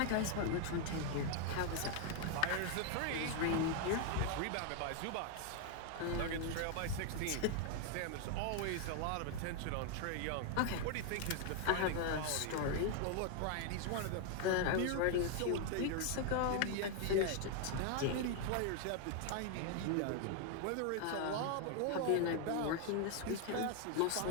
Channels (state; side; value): different; both; correlation 0.00